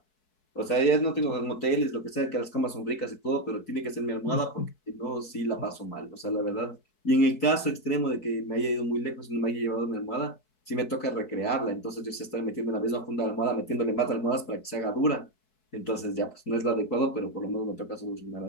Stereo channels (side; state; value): right; late; 4.6 ms